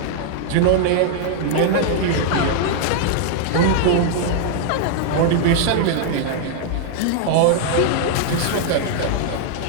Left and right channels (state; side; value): different; both; correlation 0.00